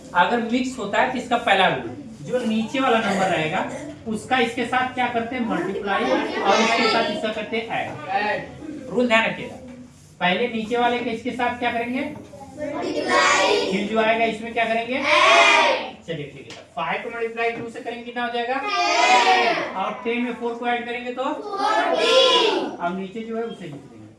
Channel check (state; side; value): identical; both; correlation 1.00